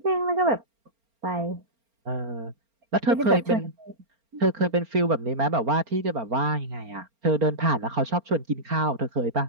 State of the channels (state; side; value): late; left; 4.4 ms